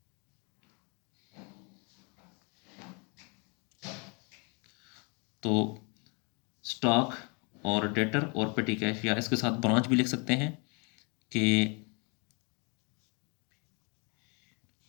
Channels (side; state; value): right; quieter; 32.9 dB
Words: तो स्टॉक और डेटर और पेटी कैश, या इसके साथ ब्रांच भी लिख सकते हैं कि